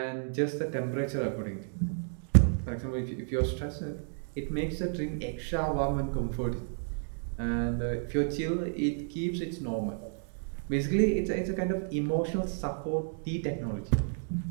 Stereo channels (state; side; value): silent; left; 57 dB below the other